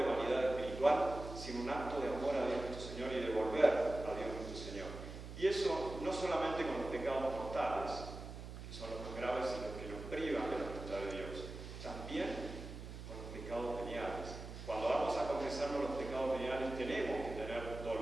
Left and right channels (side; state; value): right; noise; hum, 10 dB below the sound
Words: vanidad espiritual, sino un acto de amor a Dios nuestro Señor y de volver a Dios nuestro Señor. Y eso no solamente con los pecados mortales, que son los más graves y los que nos privan de la voluntad de Dios, también con los pecados veniales. Cuando vamos a confesarnos los pecados veniales tenemos que tener